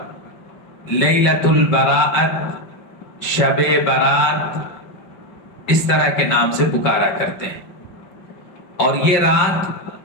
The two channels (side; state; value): right; late; 5.3 ms